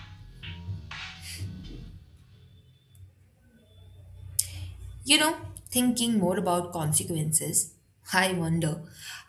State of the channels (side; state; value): both; identical; correlation 1.00